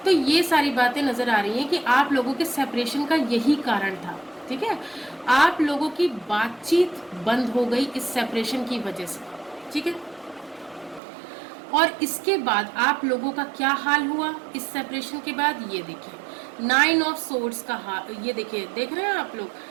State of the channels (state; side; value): drops out; left; at 11.0 s